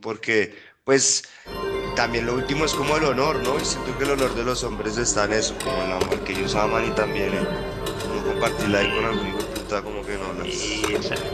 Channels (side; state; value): both; identical; correlation 1.00